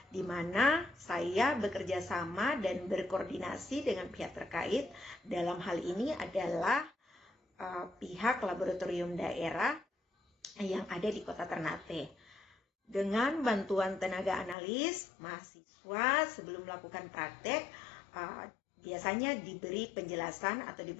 di mana saya bekerja sama dan berkoordinasi dengan pihak terkait. Dalam hal ini adalah pihak laboratorium daerah yang ada di Kota Ternate. Dengan bantuan tenaga analis, mahasiswa sebelum melakukan praktek biasanya diberi penjelasan atau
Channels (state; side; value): drops out; right; at 14.6 s